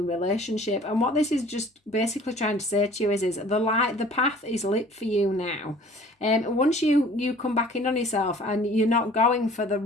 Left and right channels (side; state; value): both; normal; correlation 0.50